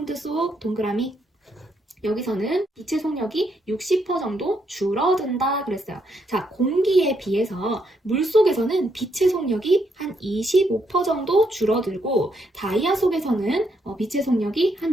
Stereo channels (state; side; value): normal; both; correlation 0.76